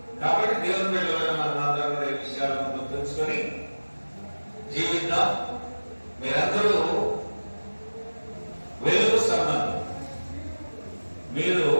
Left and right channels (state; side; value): inverted; both; correlation -1.00